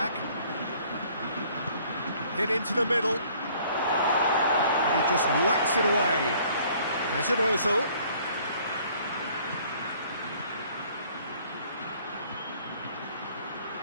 Hit into the middle. And he just whacks it away. Mesut Ozil.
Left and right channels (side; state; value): both; inverted; correlation -0.58